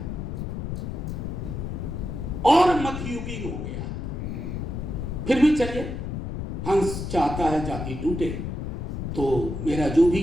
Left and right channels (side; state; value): left; noise; rumble, 4 dB below the sound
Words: और मध्ययुगीन हो गया है। फिर भी चलिए, हंस चाहता है जाति टूटे, तो मेरा जो भी